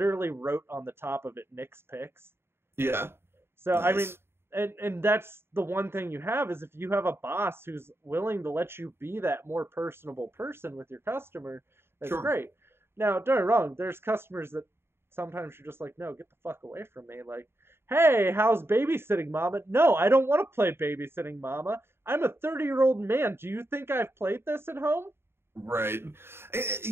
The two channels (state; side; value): late; left; 0.11 ms